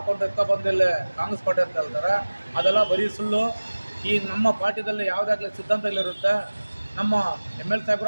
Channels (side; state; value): both; inverted; correlation -1.00